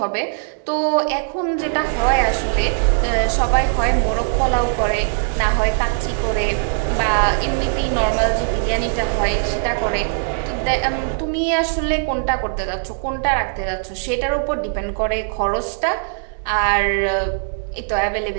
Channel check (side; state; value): left; silent; digital silence